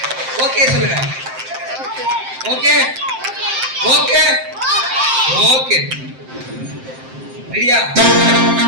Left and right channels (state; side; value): late; left; 7.7 ms